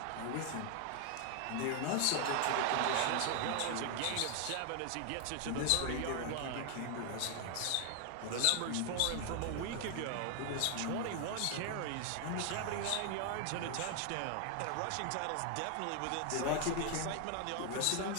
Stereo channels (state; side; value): different; both; correlation 0.00